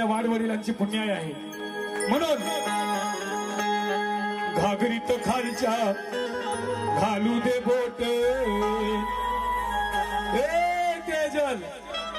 वाडवडिलांची पुण्याई आहे। म्हणून घागरीत खालच्या घालू दे बोट, तेजल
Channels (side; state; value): both; identical; correlation 1.00